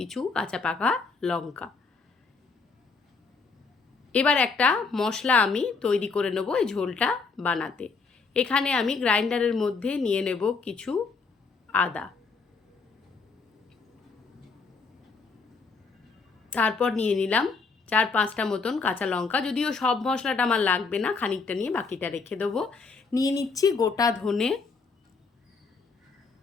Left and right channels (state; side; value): quieter; right; 4.6 dB